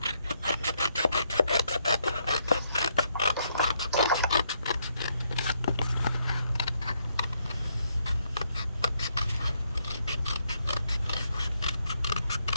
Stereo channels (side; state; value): both; inverted; correlation -0.75